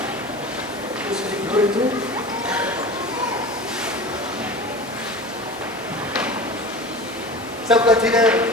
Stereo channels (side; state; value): both; normal; correlation 0.33